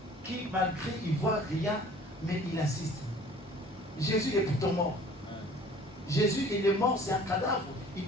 qui, malgré, ils ne voient rien, mais ils assistent. Jésus est pourtant mort. Jésus, il est mort, c'est un cadavre. Il ne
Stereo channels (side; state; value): both; normal; correlation 0.50